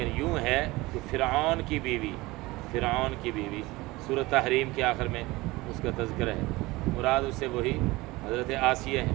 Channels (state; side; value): quieter; left; 20.9 dB